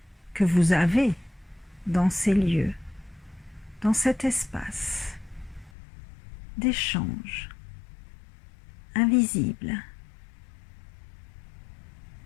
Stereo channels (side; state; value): right; drops out; at 5.7 s